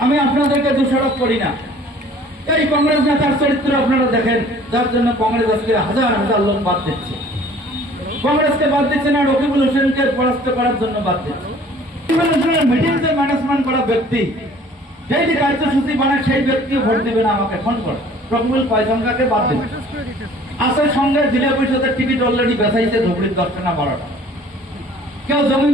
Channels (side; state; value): both; normal; correlation 0.52